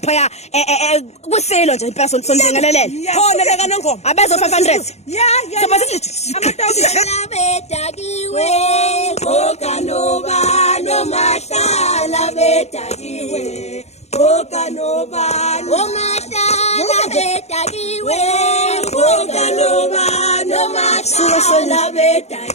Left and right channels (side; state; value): right; late; 0.32 ms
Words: ya kusilo nje impela sonjengelelele khona leka nongoma abezo 500 Bedakiwe, Okanobano Mashala Bedakiwe, Okanobano Mashala Bedakiwe, Okanobano Mashala